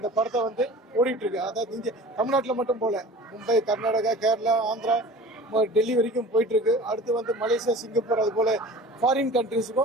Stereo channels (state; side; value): normal; both; correlation 0.41